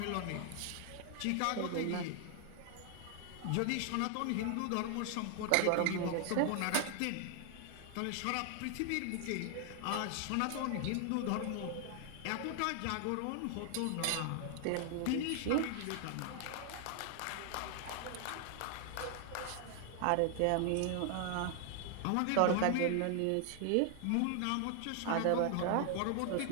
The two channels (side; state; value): both; different; correlation 0.00